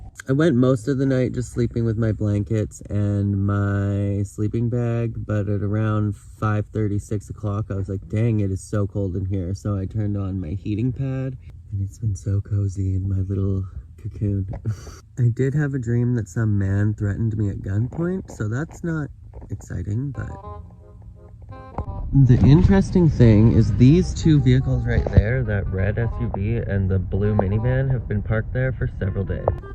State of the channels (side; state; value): both; identical; correlation 1.00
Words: I went most of the night just sleeping with my blankets and my sleeping bag, but at around 5:30, 6 o'clock, I was like, dang, it is so cold in here. So I turned on my heating pad, and it's been so cozy in my little cocoon. I did have a dream that some man threatened me at gunpoint, so that's not exciting, but The interesting thing is these two vehicles right there, that red SUV and the blue minivan, have been parked there for several days.